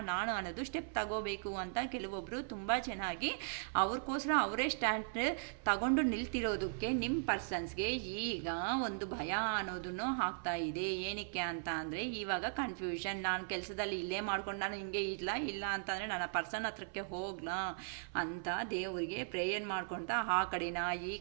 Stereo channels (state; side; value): silent; left; 52 dB below the other